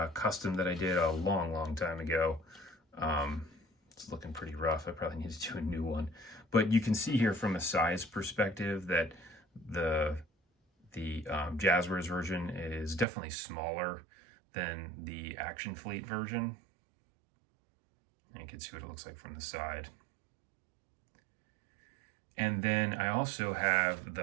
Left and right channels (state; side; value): drops out; left; at 13.1 s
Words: custom that I did a long time ago. It's looking pretty rough. I probably need to do a new one. But you can see here from a size perspective that the Jazzwares version is definitely smaller than the Action Fleet version. And you can see what it looks like from the side. And then I also have